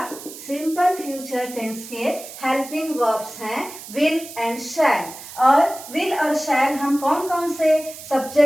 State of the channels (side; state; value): right; noise; hiss, 14 dB below the sound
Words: सिंपल फ्यूचर टेंस के हेल्पिंग वर्ब्स हैं विल एंड शैल। और विल और शैल हम कौन कौन से